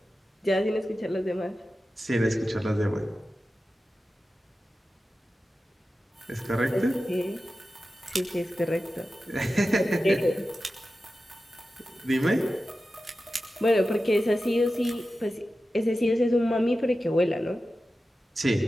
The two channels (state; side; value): normal; both; correlation 0.93